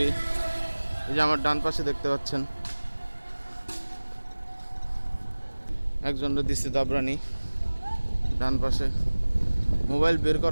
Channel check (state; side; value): inverted; both; correlation -1.00